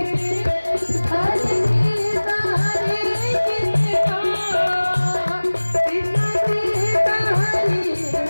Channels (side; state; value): both; inverted; correlation -1.00